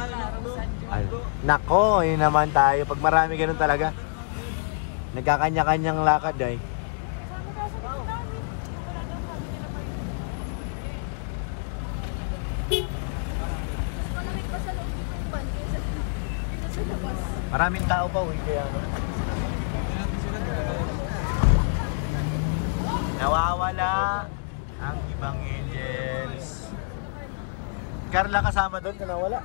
Ay, nako, yun naman tayo. Pag marami ganun talaga. Nagkakanya-kanyang lakad ay. Maraming tao pa, uwi kaya ano. Nawawala ang ibang angels. Carla kasama dun na nawala?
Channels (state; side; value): silent; right; digital silence